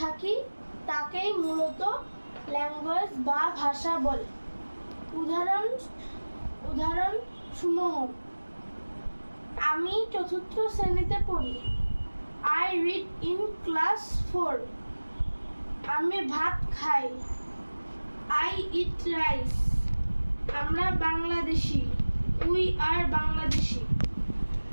থাকি তাকেই মূলত ল্যাঙ্গুয়েজ বা ভাষা বলে। উদাহরণ সমূহ: আমি চতুর্থ শ্রেণীতে পড়ি। I read in class 4. আমি ভাত খাই। I eat rice. আমরা বাংলাদেশি। We are Bangladeshi.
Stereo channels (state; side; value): inverted; both; correlation -1.00